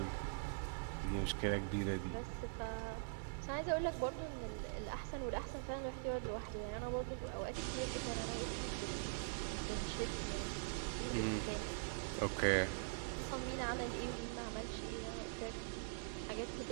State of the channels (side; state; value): left; silent; digital silence